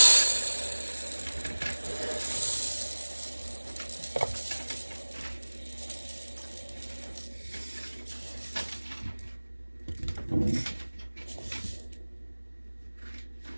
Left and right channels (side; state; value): both; inverted; correlation -1.00